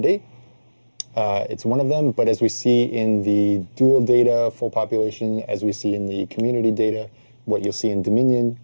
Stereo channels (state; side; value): inverted; both; correlation -1.00